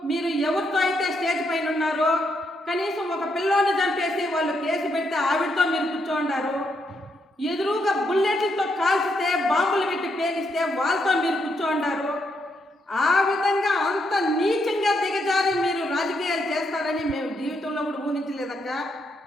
మీరు ఎవరితో అయితే స్టేజ్ పైన ఉన్నారో, కనీసం ఒక పిల్లోని చంపేసి వాళ్ళు కేసు పెడితే ఆవిడతో మీరు కూర్చోండారు. ఎదురుగా బుల్లెట్లతో కాల్చితే బాంబులు పెట్టి పేలిస్తే వాళ్ళతో మీరు కూర్చోండారు. ఆ విధంగా అంత నీచంగా దిగజారి మీరు రాజకీయాలు చేస్తారని మేము జీవితంలో కూడా ఊహించలేదక్క.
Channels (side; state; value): both; normal; correlation 0.78